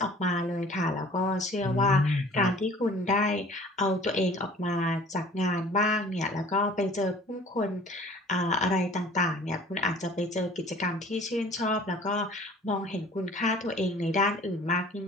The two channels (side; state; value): both; normal; correlation 0.49